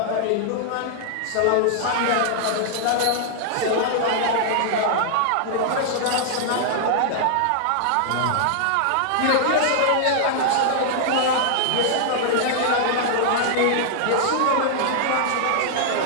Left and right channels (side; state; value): both; different; correlation -0.01